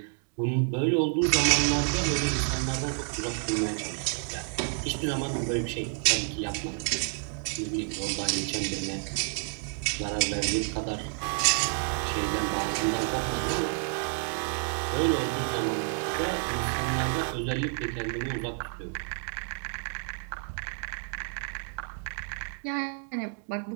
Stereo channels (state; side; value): silent; left; 56 dB below the other